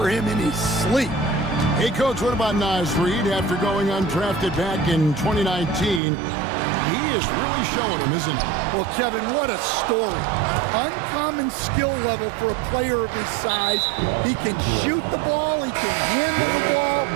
him in his sleep. Hey, Coach, what about Naz Reid after going undrafted back in 2019? He is really showing him, isn't he? Well, Kevin, what a story. Uncommon skill level for a player of his size. He can shoot the ball. He can handle the ball.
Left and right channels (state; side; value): drops out; left; at 6.0 s